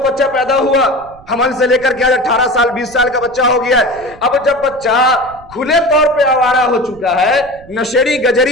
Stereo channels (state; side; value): noise; right; rumble, 23 dB below the sound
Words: بچہ پیدا ہوا، حمل سے لے کر کے آج 18 سال 20 سال کا بچہ ہو گیا ہے۔ اب جب بچہ کھلے طور پہ آوارہ ہو چکا ہے، نشیڑی